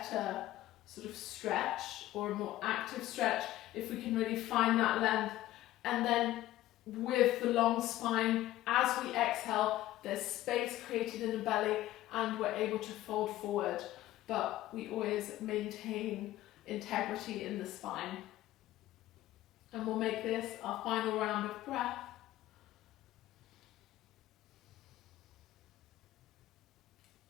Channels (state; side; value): quieter; right; 15.1 dB